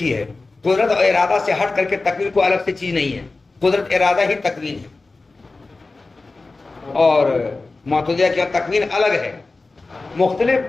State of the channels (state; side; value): quieter; right; 3.5 dB